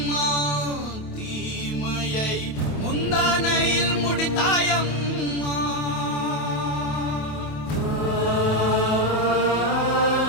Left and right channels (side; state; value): right; late; 28 ms